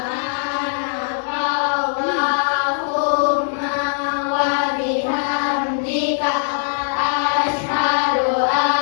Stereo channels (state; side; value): silent; right; digital silence